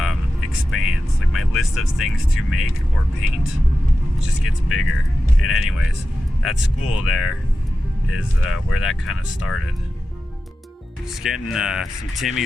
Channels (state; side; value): normal; both; correlation 0.92